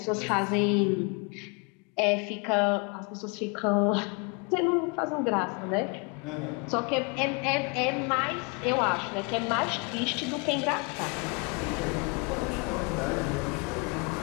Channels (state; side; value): quieter; right; 32.2 dB